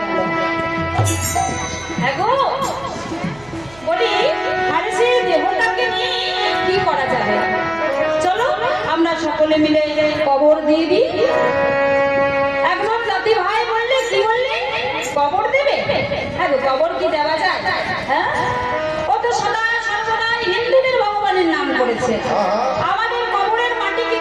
গেল। এগো বলি, হারিসের দেহটাকে নিয়ে কি করা যাবে? চলো আমরা সকলে মিলে কবর দিয়ে দিই। একজন জাতি ভাই বললে, কি বললে, কবর দেবে? হ্যাঁ গো, কবর কি দেওয়া যায়? হ্যাঁ, ও তো সদা সর্বদাই হিন্দুদের ভগবানের নাম করেছে, আমাদের কবরের মাটিকে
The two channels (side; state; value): right; noise; hum, 24 dB below the sound